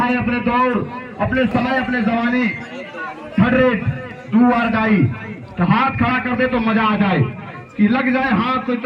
है अपने दौर, अपने समय, अपने जवानी, थर्ड रेट 2 आर डाई, तो हाथ खड़ा कर दे तो मजा आ जाए कि लग जाए हाथ। तो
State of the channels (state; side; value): identical; both; correlation 1.00